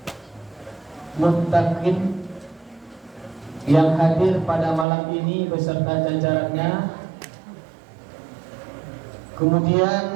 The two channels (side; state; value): left; drops out; at 4.9 s